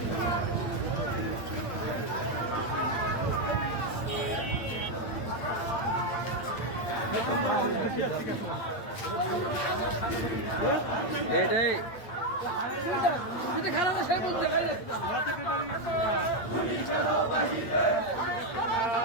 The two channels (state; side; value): late; right; 8.8 ms